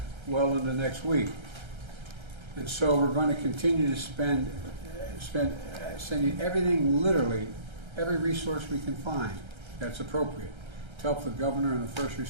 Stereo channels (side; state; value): left; late; 1.3 ms